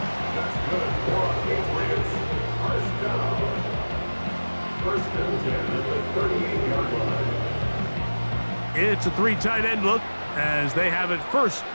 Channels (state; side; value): inverted; both; correlation -1.00